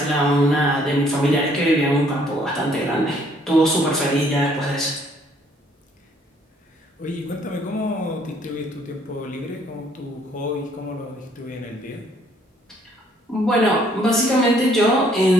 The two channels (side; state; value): both; normal; correlation 0.64